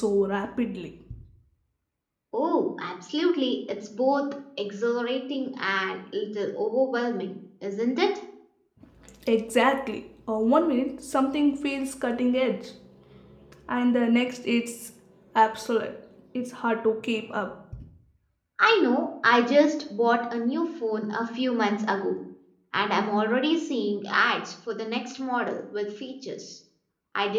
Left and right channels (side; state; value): both; identical; correlation 1.00